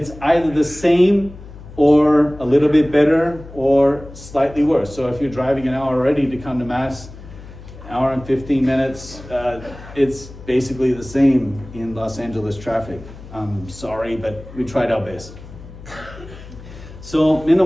either the same or a little bit better or slightly worse. So if you're driving an hour already to come to Mass, hour and 15 minutes, it's basically the same in Los Angeles traffic. I'm sorry, but we tried our best. So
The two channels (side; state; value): left; noise; hum, 16 dB below the sound